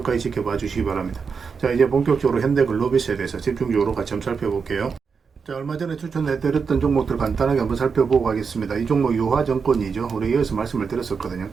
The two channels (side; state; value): left; quieter; 5.6 dB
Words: 지켜봐 주시기 바랍니다. 자, 이제 본격적으로 현대글로비스에 대해서 집중적으로 같이 한번 살펴볼게요. 자, 얼마 전에 추천해드렸던 종목들 간단하게 한번 살펴보고 가겠습니다. 이 종목 유화증권이죠. 우리 여기서 말씀을 드렸었거든요.